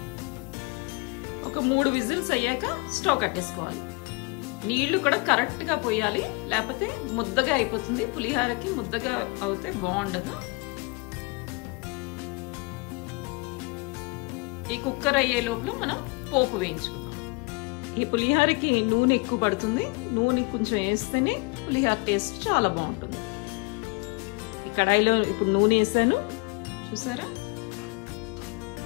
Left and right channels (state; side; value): quieter; right; 28.7 dB